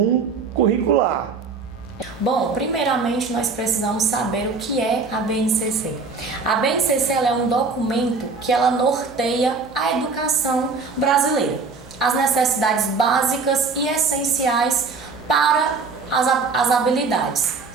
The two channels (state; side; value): quieter; left; 4.4 dB